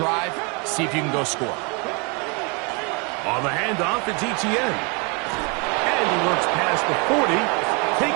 see if you can go score. On the handoff, it's ETN. And he works past the 40,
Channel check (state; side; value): quieter; left; 32.5 dB